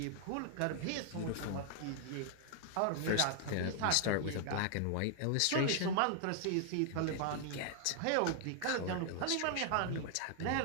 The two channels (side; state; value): both; different; correlation 0.00